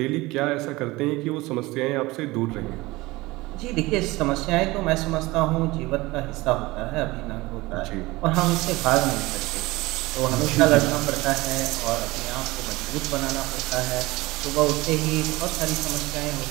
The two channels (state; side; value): quieter; left; 20.8 dB